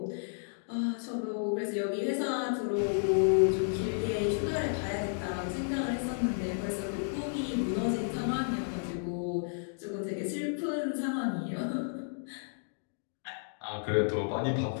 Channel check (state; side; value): silent; right; digital silence